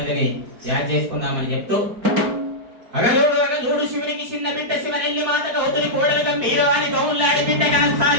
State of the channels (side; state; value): left; late; 4.6 ms